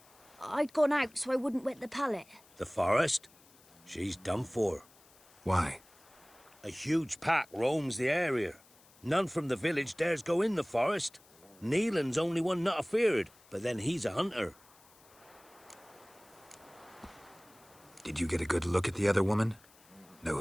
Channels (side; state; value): left; noise; hiss, 27 dB below the sound